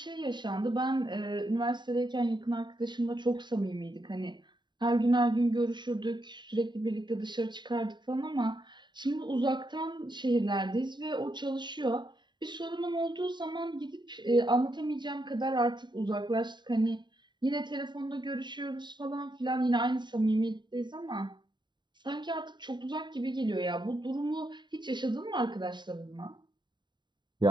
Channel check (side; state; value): left; late; 0.22 ms